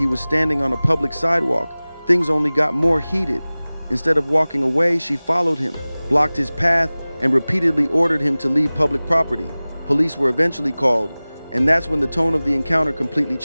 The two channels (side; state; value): both; inverted; correlation -0.99